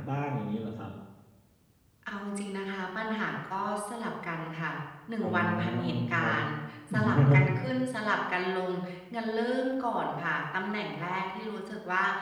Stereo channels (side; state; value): both; identical; correlation 1.00